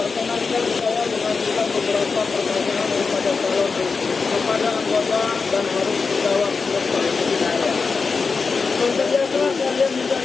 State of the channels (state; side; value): quieter; right; 4.8 dB